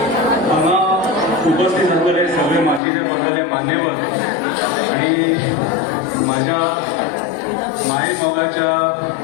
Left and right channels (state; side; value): drops out; right; at 2.8 s